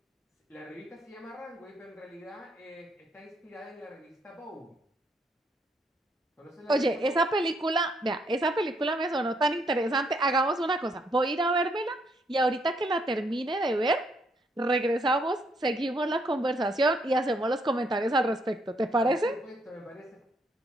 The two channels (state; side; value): normal; both; correlation 0.72